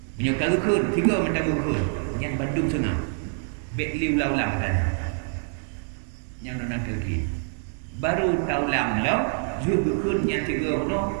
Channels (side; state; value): left; silent; 61 dB below the other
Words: Menyokal kun, tiga mentang kun. Yang Bandung sana. Bek liu laulang kan. Yang nona lagi. Baru taulang lo, juga kun yang tiga no,